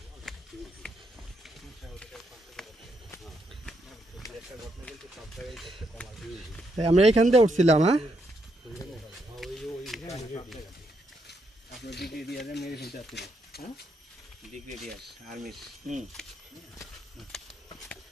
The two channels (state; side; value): normal; both; correlation 0.78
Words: আমরা এইখান দিয়ে উঠছিলাম হ্যাঁ আপনার ব্রিগেডিয়ারে মেরে ফেলতে আসছিল হ্যাঁ ব্রিগেডিয়ার আর্মিস